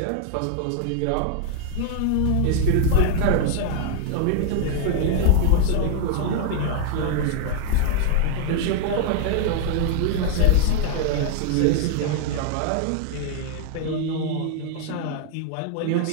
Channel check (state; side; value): different; both; correlation 0.00